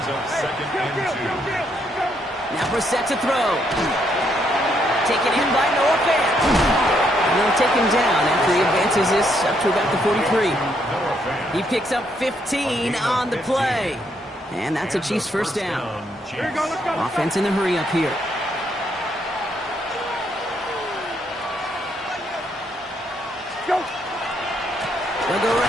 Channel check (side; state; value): both; normal; correlation 0.74